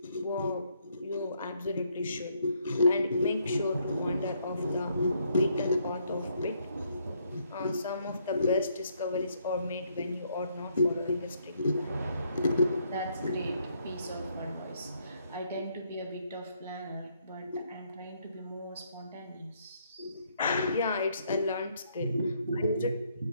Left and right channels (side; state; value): both; inverted; correlation -0.71